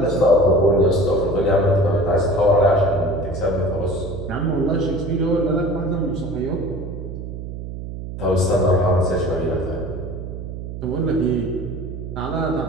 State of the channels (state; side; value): noise; right; hum, 8 dB below the sound